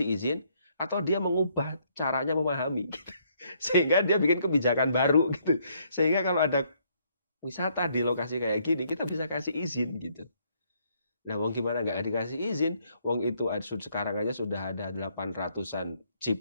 izin atau dia mengubah caranya memahami, gitu. Sehingga dia bikin kebijakan baru, gitu. Sehingga kalau ada wisata di lokasi kayak gini, kita bisa kasih izin, gitu. Nah, wong gimana nggak dikasih izin? Wong itu sekarang aja sudah ada 800-an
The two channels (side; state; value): both; inverted; correlation -0.69